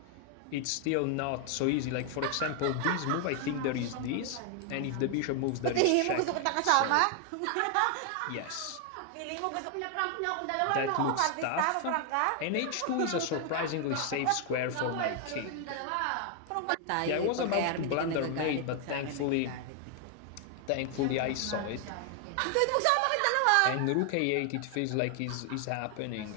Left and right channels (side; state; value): both; different; correlation 0.00